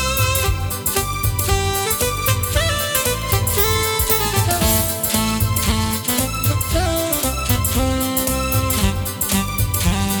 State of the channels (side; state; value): both; identical; correlation 1.00